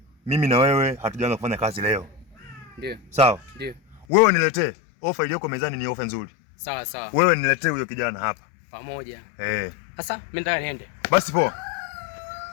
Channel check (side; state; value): right; drops out; at 4.0 s